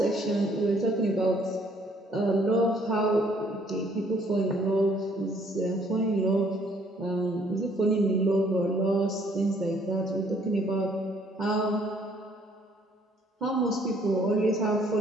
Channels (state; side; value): normal; both; correlation 0.63